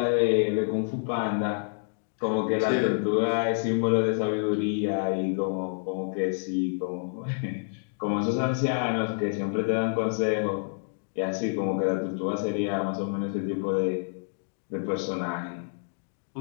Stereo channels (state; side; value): silent; right; digital silence